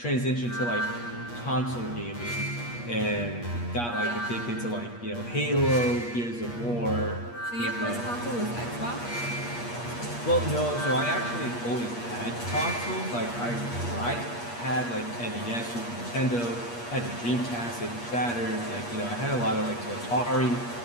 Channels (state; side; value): late; right; 8.4 ms